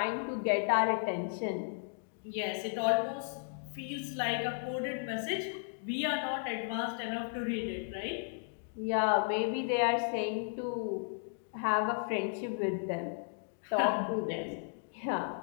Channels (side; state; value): right; silent; digital silence